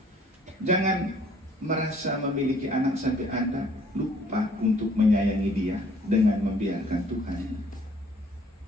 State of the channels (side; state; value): both; normal; correlation 0.59